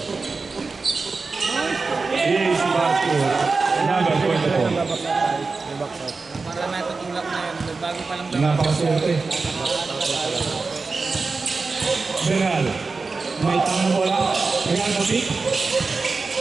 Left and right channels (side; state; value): left; quieter; 4.2 dB